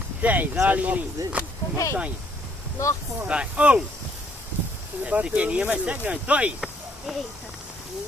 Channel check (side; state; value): both; normal; correlation 0.66